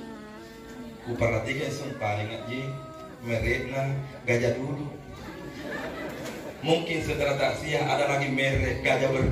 Ku perhatikan sumpah ngaji mereknya gajah dulu. Mungkin setelah taksiah ada lagi merek gajah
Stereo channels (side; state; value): both; identical; correlation 1.00